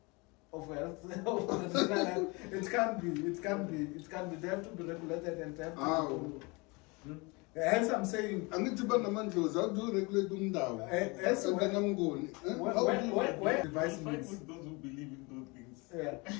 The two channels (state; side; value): quieter; right; 27.1 dB